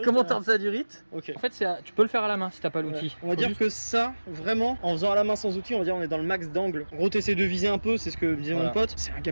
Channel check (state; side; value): inverted; both; correlation -1.00